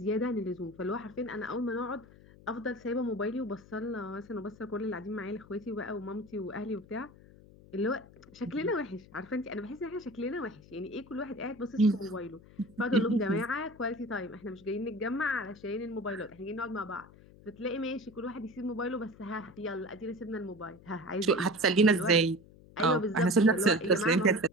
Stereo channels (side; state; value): left; noise; hum, 22 dB below the sound